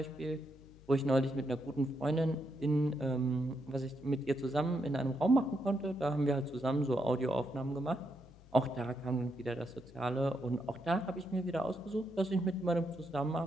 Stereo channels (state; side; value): noise; left; hum, 22 dB below the sound